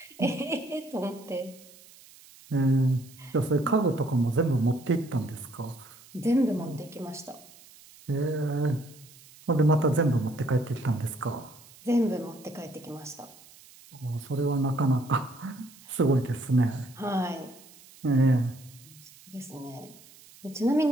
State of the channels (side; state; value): right; noise; hiss, 23 dB below the sound